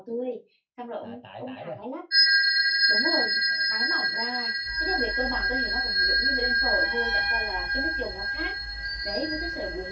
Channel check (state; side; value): identical; both; correlation 1.00